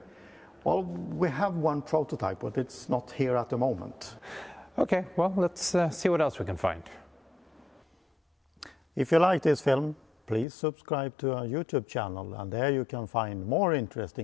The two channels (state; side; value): drops out; right; at 10.5 s